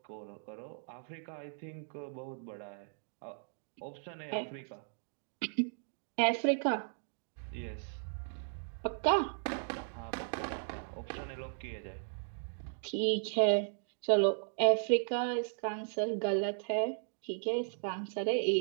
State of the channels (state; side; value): silent; left; digital silence